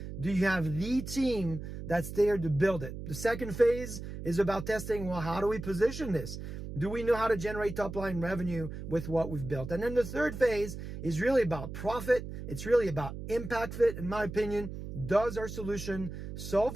Do you have the team that's there to build it? The second phase is about testing, well, how do we position this? Do we know how to generate top-line revenue with what we've built? And then the third phase is really about profit. It's really about impact fit, in my opinion. Does our solution solve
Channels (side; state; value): right; noise; hum, 9 dB below the sound